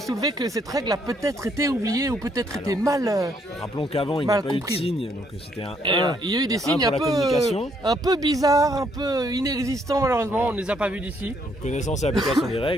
soulever que cette règle a peut-être été oubliée ou peut-être été mal. Rappelons qu'avant, il n'y a Mal pas eu de comprise. signe, donc c'était un Et 1. il y a eu des un signes pour la communication. un peu bizarres, un peu inexistants malheureusement. On ne les a pas vus d'ici. Donc, connaissance et application des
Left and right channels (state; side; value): normal; both; correlation 0.70